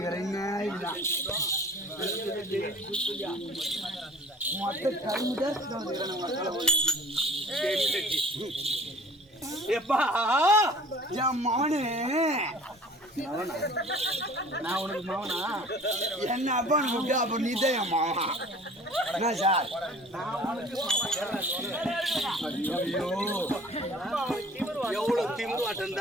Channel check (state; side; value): normal; both; correlation 0.47